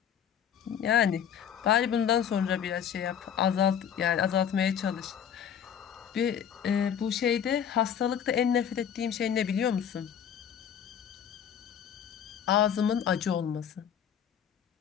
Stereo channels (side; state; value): right; quieter; 8.7 dB